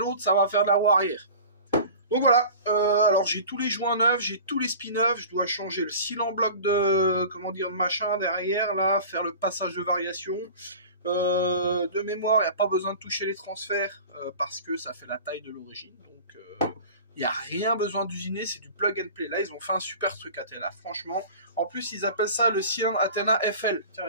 ça va faire de la roue arrière. Donc voilà, alors j'ai tous les joints neufs, j'ai tous les spins neufs, je dois changer le seal en bloc de, comment dire, de machin derrière, là, faire le passage de variation. De mémoire, il n'y a pas besoin de toucher les transferts, parce que ça fait la taille de l'origine, donc il n'y a rien besoin d'usiner, c'est du plug and play. Là, ils ont fait un super truc Athena, franchement. En plus, ils appellent ça le cylindre Athena FL. Tiens,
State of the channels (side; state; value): both; inverted; correlation -0.39